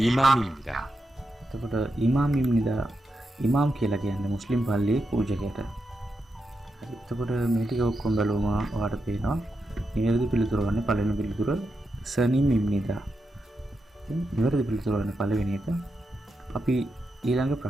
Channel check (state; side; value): normal; both; correlation 0.86